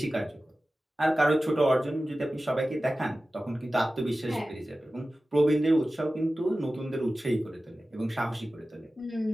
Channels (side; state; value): both; normal; correlation 0.95